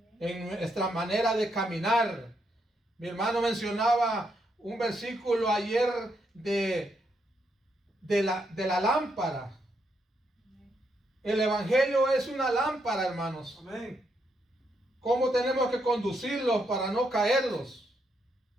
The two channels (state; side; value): normal; both; correlation 0.78